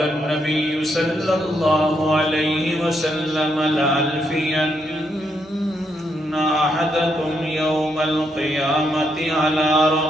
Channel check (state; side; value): normal; both; correlation 0.78